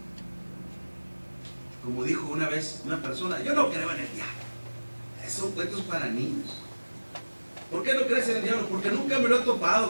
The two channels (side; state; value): both; inverted; correlation -1.00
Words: Como dijo una vez una persona: yo no creo en el diablo, son cuentos para niños. ¿Por qué no crees en el diablo? Porque nunca me lo he